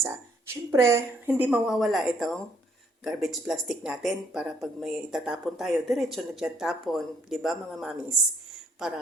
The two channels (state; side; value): normal; both; correlation 0.68